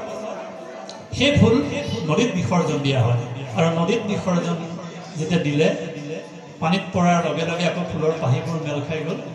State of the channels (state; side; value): identical; both; correlation 1.00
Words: সেই ফুল নদীত বিসৰ্জন দিয়া হয়। আৰু নদীত বিসৰ্জন যেতিয়া দিলে, পানীত পৰাৰ লগে লগে আকৌ ফুলৰ পাহিবোৰ মেল খাই গ'ল।